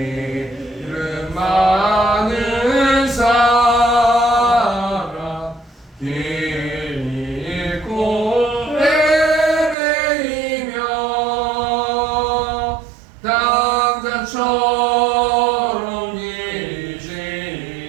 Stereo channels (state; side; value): drops out; left; at 9.8 s